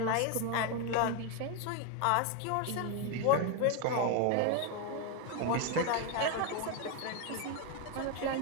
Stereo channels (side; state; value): both; different; correlation 0.01